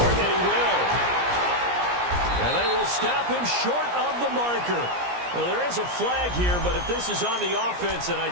and he will. And they will stop him short of the marker. Well, there is a flag here, but if this is on the offense, and I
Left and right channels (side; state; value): left; late; 17 ms